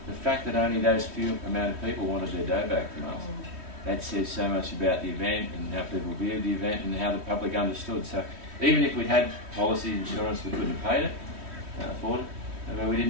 the fact that only those few amount of people wanted their dough back from us, that says so much about the event and how people viewed the event and how the public understood. So even if we'd had policy insurance, we couldn't have paid it, afford it. But we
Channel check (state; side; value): late; left; 3.1 ms